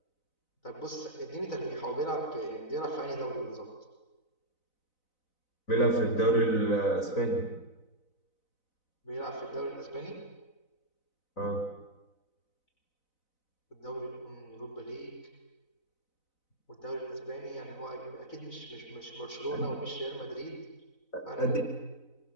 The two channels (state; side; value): late; right; 4.0 ms